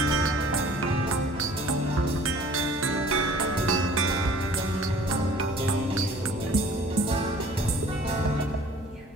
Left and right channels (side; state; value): both; normal; correlation 0.50